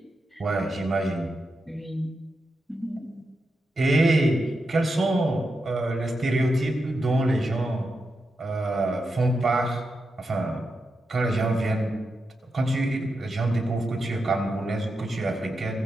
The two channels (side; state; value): both; normal; correlation 0.87